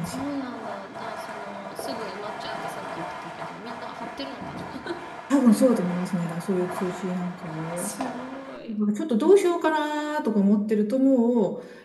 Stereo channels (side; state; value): both; identical; correlation 1.00